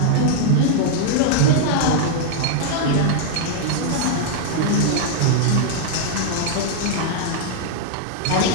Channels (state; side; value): different; both; correlation -0.01